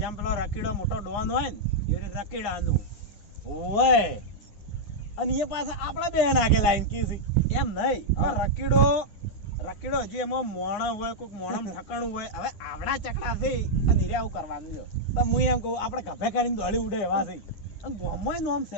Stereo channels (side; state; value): right; late; 9.6 ms